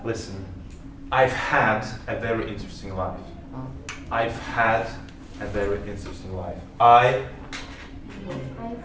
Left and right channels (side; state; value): both; identical; correlation 1.00